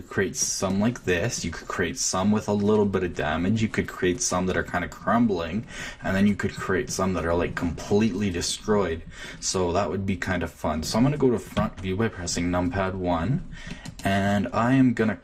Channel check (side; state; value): both; identical; correlation 1.00